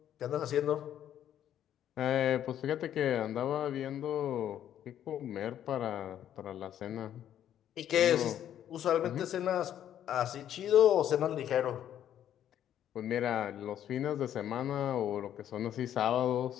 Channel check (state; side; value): quieter; right; 10.6 dB